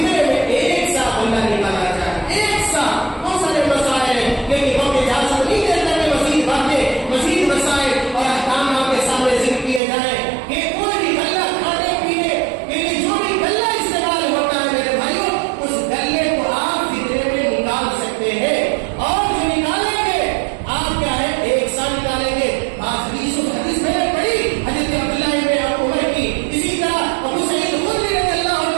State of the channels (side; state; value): left; drops out; at 9.8 s